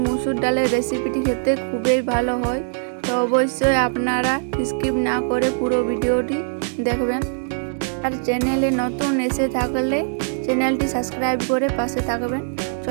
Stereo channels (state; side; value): silent; left; digital silence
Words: মুসুর ডালের রেসিপিটি খেতে খুবই ভালো হয়, তো অবশ্যই আপনারা স্কিপ না করে পুরো ভিডিওটি দেখবেন। আর চ্যানেলে নতুন এসে থাকলে চ্যানেলটি সাবস্ক্রাইব করে পাশে থাকবেন।